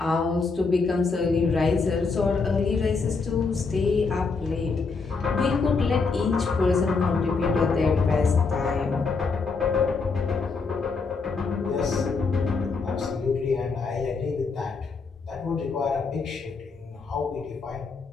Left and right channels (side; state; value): right; quieter; 4.5 dB